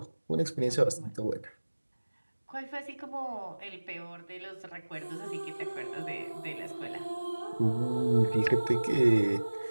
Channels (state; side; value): inverted; both; correlation -1.00